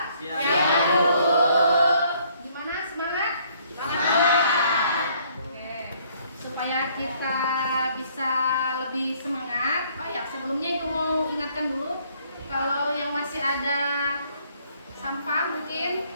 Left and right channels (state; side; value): inverted; both; correlation -0.64